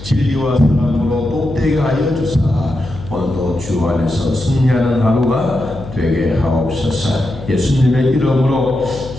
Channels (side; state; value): left; noise; hum, 13 dB below the sound